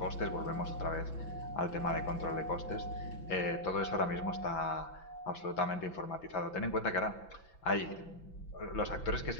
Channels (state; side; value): late; right; 5.9 ms